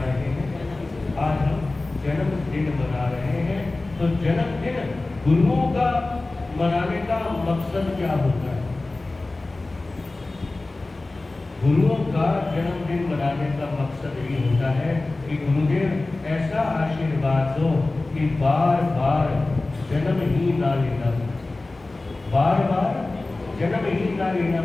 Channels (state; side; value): quieter; right; 3.1 dB